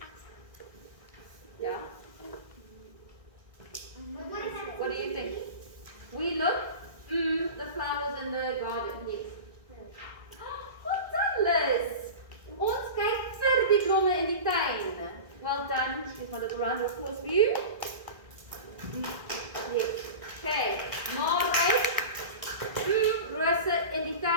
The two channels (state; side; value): late; left; 1.8 ms